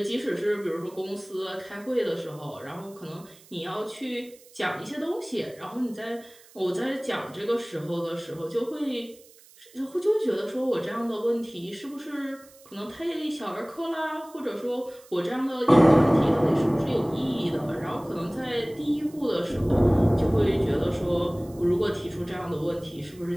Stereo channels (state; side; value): noise; right; hiss, 25 dB below the sound